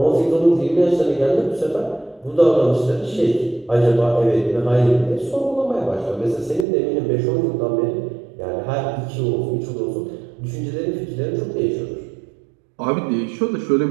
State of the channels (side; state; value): left; drops out; at 6.7 s